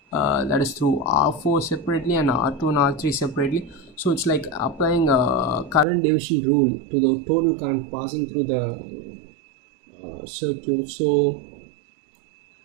that is through R4 separately and R2 and R3 separately. So it's like applying a current division rule to the total current passing through the circuit. So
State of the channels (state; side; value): drops out; left; at 5.9 s